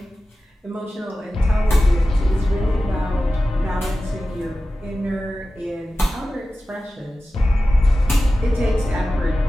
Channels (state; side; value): normal; both; correlation 0.94